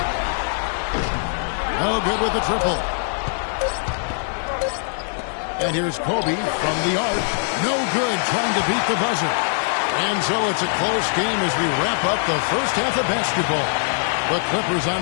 No good with the triple. And here's Kobe from the arc. No good, trying to beat the buzzer. And so it's a close game as we wrap up the first half of basketball. The Clippers on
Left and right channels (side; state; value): right; silent; 64 dB below the other